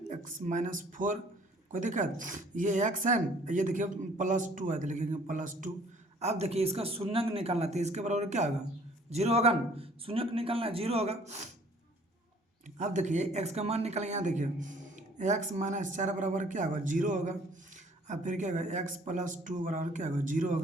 x -4। कोई दिक्कत, ये x है न, ये देखिए +2 है तो लिखेंगे +2। अब देखिए इसका शून्यक निकालना तो इसके बराबर क्या होगा 0 होगा न, शून्यक निकालना 0 होगा। अब देखिए x का मान निकालेंगे, यहाँ देखिए x -4 बराबर क्या होगा 0 होगा। अब फिर क्या होगा x +2 बराबर क्या होगा 0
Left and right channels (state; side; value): normal; both; correlation 0.56